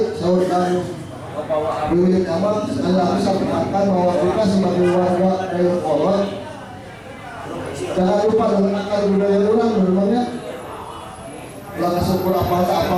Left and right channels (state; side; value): identical; both; correlation 1.00